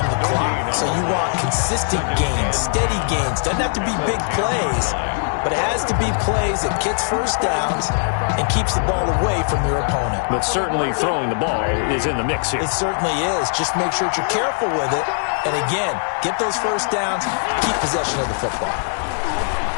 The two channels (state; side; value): silent; right; 58 dB below the other